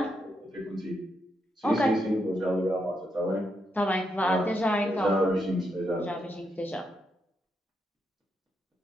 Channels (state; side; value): normal; both; correlation 0.81